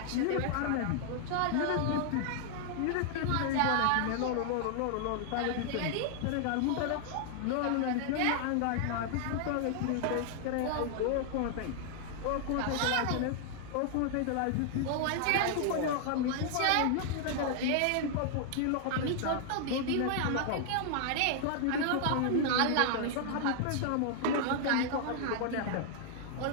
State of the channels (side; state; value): both; different; correlation 0.00